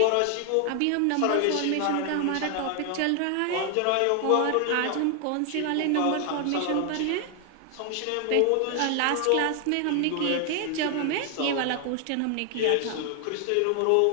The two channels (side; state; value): both; different; correlation 0.00